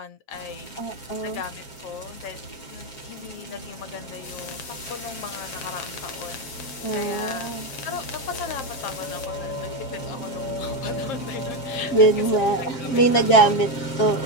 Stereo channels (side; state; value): right; late; 7.5 ms